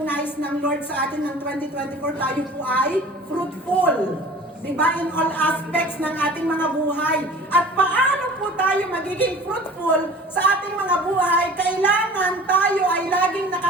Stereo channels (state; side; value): normal; both; correlation 0.43